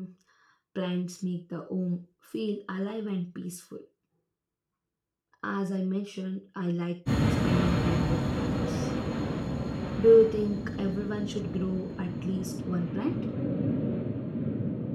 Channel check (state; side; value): identical; both; correlation 1.00